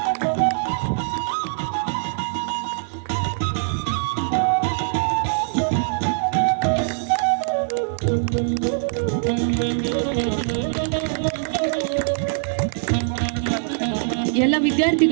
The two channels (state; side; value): silent; left; digital silence